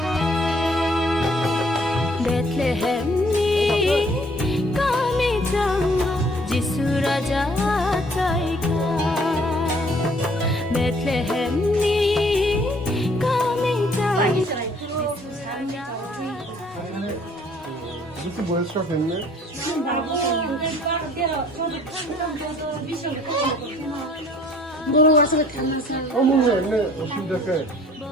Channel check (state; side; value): normal; both; correlation 0.59